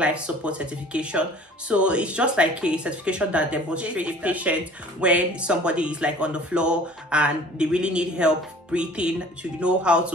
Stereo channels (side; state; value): both; normal; correlation 0.48